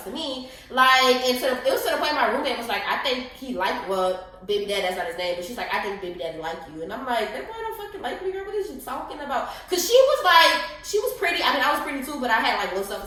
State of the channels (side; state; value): both; identical; correlation 1.00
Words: to me. Like, and it was to the point my roommate was like, I think he liked, well, baby dad, that's not his name. But she's like, I think baby daddy like you. And I'm like, that boy don't fucking like me, girl. What is you talking about? Because she was pretty. I mean, I was pretty too, but I had, like, low